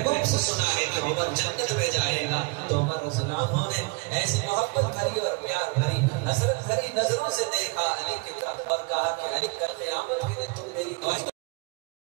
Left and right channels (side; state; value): left; quieter; 29.3 dB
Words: से सुना है कि उमर जन्नत में जाएगा। तो उमर रज़ियल्लाहु अन्हु ने ऐसी मोहब्बत भरी और प्यार भरी, हसरत भरी नजरों से देखा अली की तरफ और कहा कि अली कल क़यामत के दिन तुम मेरी गवाही।